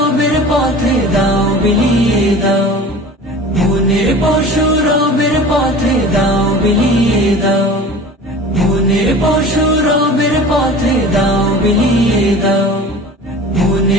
পথে দাও বিলিয়ে দাও, মনের পশু রবের পথে দাও বিলিয়ে দাও, মনের পশু রবের পথে দাও বিলিয়ে দাও,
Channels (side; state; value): both; normal; correlation 0.39